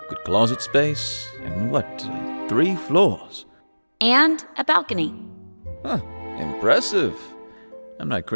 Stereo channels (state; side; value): inverted; both; correlation -1.00